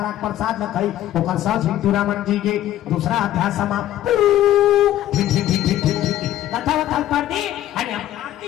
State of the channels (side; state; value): right; quieter; 13.0 dB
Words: प्रसाद न खाई ओकर साउ झिंटूरामन जी के दूसरा अध्याय समाप्त कथा वथा पढ़ दी आणि